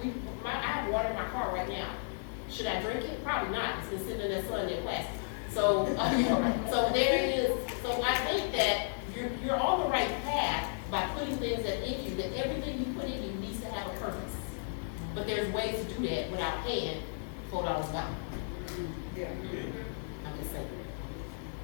I have water in my car right now. Should I drink it? Probably not. It's been sitting in that sun in plastic. So, so there it is. So I think that you're on the right path by putting things that in you, that everything you put in you needs to have a purpose. But there's ways to do that without paying $4 a gallon. Yeah. I'm just saying.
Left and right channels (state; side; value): silent; right; 55 dB below the other